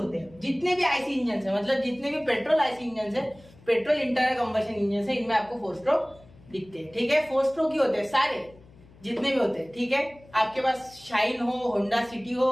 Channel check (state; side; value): noise; left; hum, 24 dB below the sound